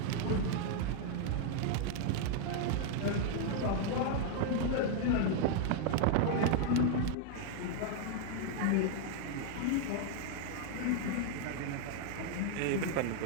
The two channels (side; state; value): both; different; correlation 0.00